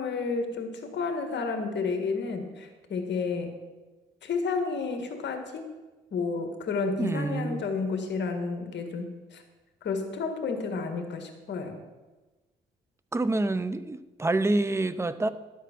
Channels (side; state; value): both; normal; correlation 0.64